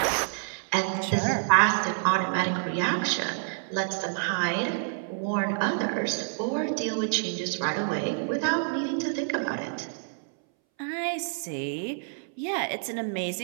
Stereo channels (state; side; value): silent; left; 59 dB below the other